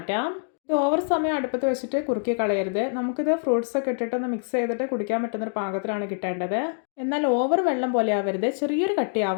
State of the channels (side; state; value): right; silent; digital silence